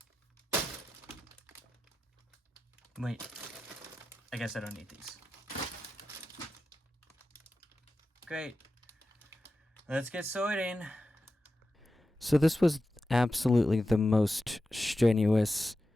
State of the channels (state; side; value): normal; both; correlation 0.92